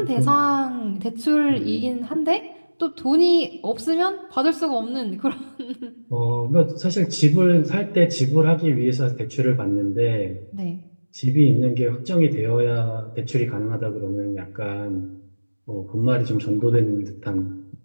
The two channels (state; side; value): inverted; both; correlation -1.00